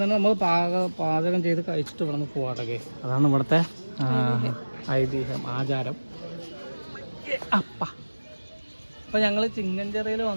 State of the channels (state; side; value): inverted; both; correlation -1.00